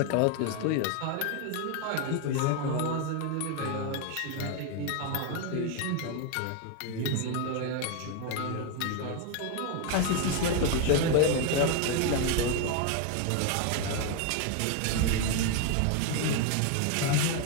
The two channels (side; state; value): both; different; correlation 0.01